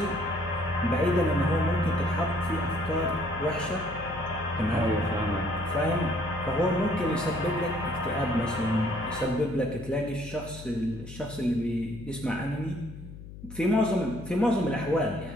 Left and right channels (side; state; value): left; noise; hum, 14 dB below the sound